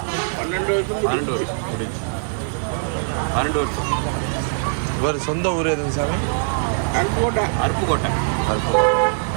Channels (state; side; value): silent; left; digital silence